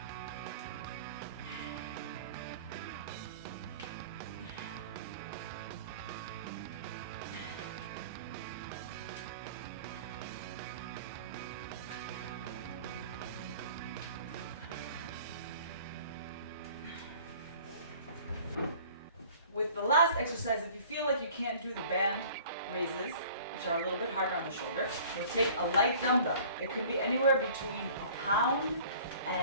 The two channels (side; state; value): both; inverted; correlation -0.48